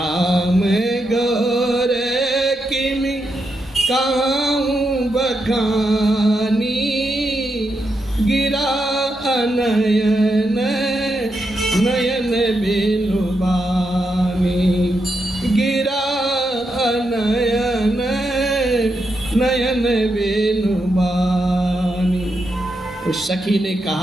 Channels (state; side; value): normal; both; correlation 0.84